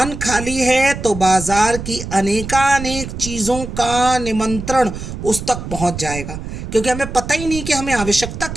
खाली है तो बाजार की अनेकानेक चीज़ों का निमंत्रण उस तक पहुंच जाएगा। क्योंकि हमें पता ही नहीं कि हमें आवश्यकता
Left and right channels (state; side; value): noise; right; rumble, 8 dB below the sound